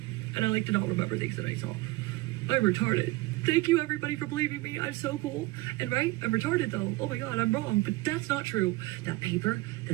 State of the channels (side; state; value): left; quieter; 20.2 dB